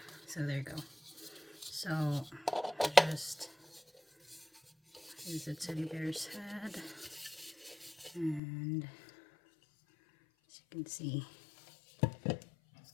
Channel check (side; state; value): right; drops out; at 8.4 s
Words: So there you go. So here's the teddy bear's head. And as you can see,